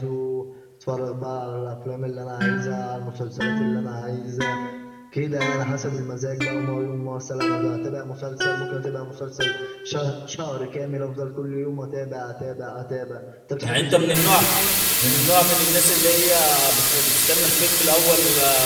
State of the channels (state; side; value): identical; both; correlation 1.00